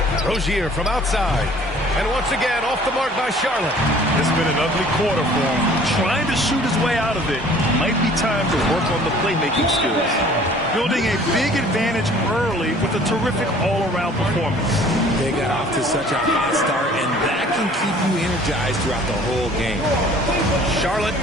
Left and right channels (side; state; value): both; normal; correlation 0.52